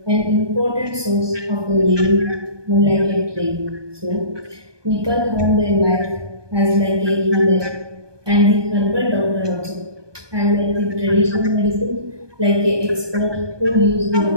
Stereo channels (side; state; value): left; late; 1.2 ms